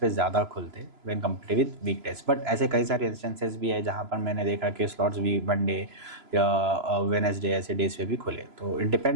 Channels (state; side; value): late; left; 3.0 ms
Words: ज़्यादा खुलते when compare with weekdays, but ऐसे कई सारे इंस्टेंसेस भी है जहाँ पर मैंने देखा कि स्लॉट्स भी मंडे या वेडनेसडे ऐसे डेज पे भी खुले। तो it